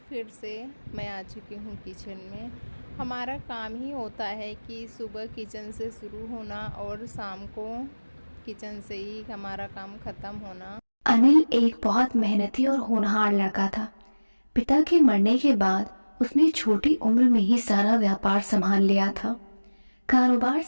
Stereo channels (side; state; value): both; inverted; correlation -1.00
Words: फिर से मैं आ चुकी हूँ किचन में। हमारा काम ही होता है कि सुबह किचन से शुरू होना और शाम को किचन से ही हमारा काम ख़त्म होना। अनिल एक बहुत मेहनती और होनहार लड़का था। पिता के मरने के बाद उसने छोटी उम्र में ही सारा व्यापार संभाल लिया था। कारोबार